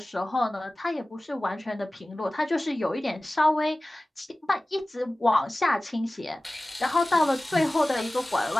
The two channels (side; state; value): both; normal; correlation 0.97